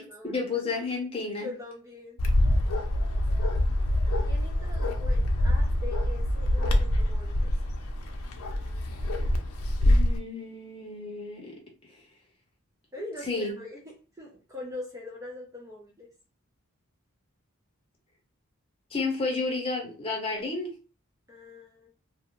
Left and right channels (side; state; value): both; normal; correlation 0.85